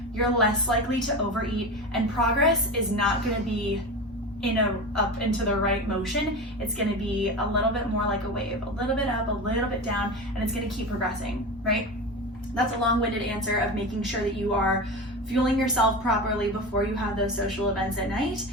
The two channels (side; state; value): both; normal; correlation 0.26